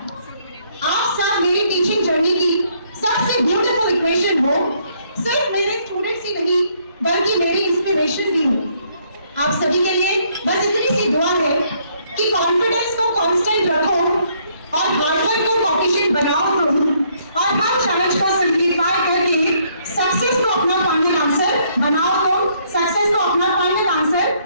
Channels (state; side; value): inverted; both; correlation -0.68